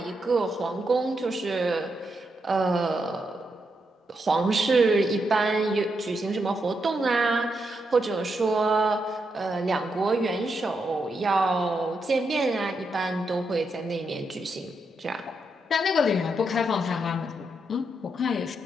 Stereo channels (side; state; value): both; normal; correlation 0.82